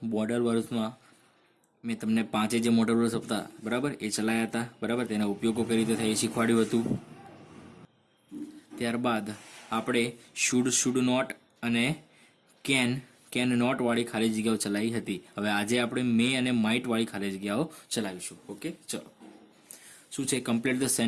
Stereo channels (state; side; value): identical; both; correlation 1.00